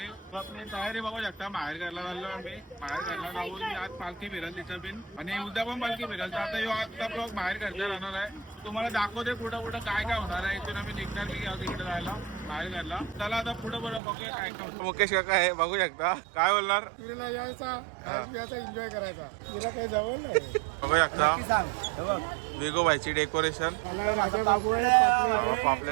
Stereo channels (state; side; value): drops out; left; at 14.0 s